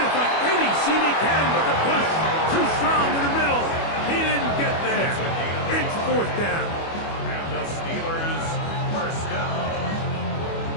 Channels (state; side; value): late; right; 25 ms